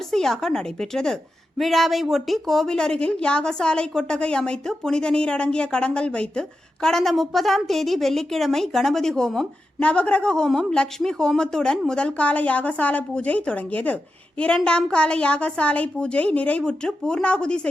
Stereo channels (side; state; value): both; normal; correlation 0.90